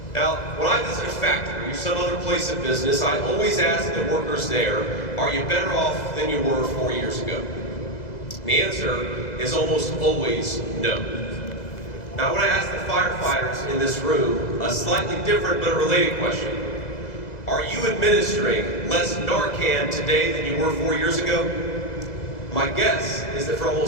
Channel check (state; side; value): late; right; 2.0 ms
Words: Now, when I visit a factory or some other place of business, I always ask the workers there, are you better off than you were 4 years ago? The answer is almost always no. Now, I want to ask the firefighters in this room a slightly different but a related question. Are you administering less Narcan today than you were 4 years ago? My guess is that for